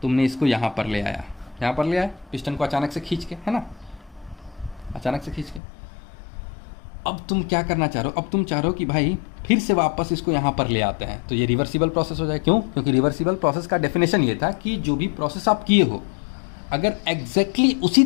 तुमने इसको यहाँ पर ले आए पिस्टन को अचानक से खींच के, है ना, अचानक से खींच के, अब तुम क्या करना चाह रहे हो, अब तुम चाह रहे हो कि भाई फिर से वापस इसको यहाँ पर ले आते हैं, तो ये रिवर्सिबल प्रोसेस हो जाए। क्यों? क्योंकि रिवर्सिबल प्रोसेस का डेफिनेशन ये था कि जो भी प्रोसेस आप किए हो अगर एग्जैक्टली उसी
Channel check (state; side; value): drops out; right; at 5.6 s